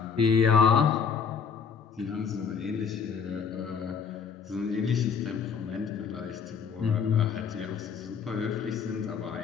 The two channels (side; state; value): right; quieter; 6.4 dB